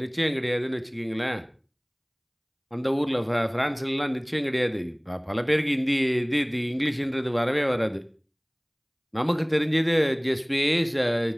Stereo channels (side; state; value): both; identical; correlation 1.00